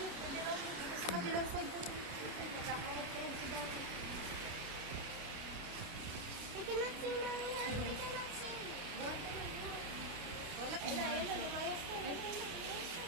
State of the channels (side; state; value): left; late; 29 ms